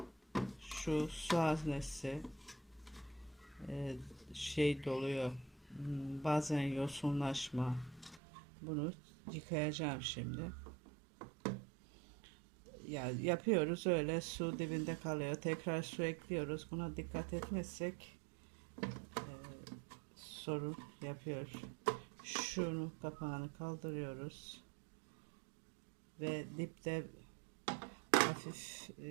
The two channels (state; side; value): drops out; left; at 8.2 s